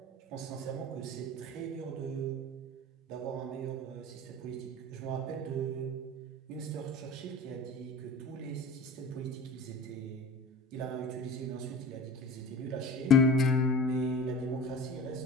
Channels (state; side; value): normal; both; correlation 0.38